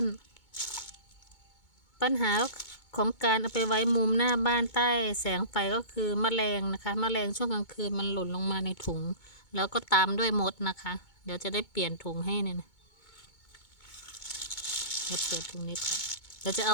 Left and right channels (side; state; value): right; late; 2.2 ms